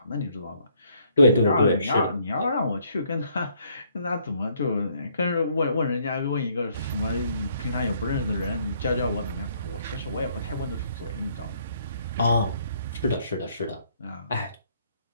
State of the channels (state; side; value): inverted; both; correlation -0.66